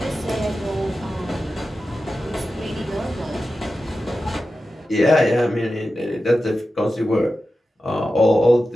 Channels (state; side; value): normal; both; correlation 0.93